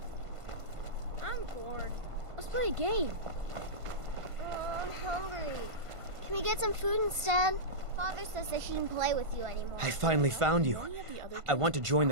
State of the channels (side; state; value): left; late; 1.5 ms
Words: I'm bored. Let's play a game. Oh, I'm hungry. Can we get some food instead? Father says I shouldn't play with you anymore. I finally found you. I want to join